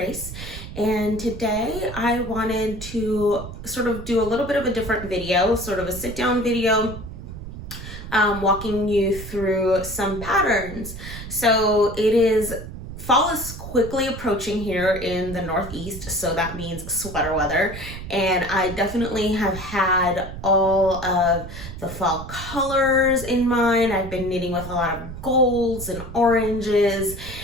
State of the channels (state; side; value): noise; right; rumble, 11 dB below the sound